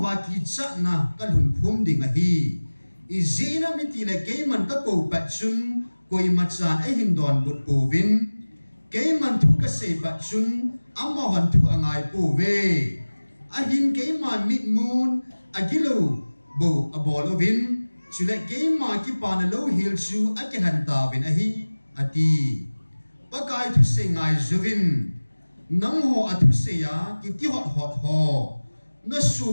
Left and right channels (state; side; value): inverted; both; correlation -1.00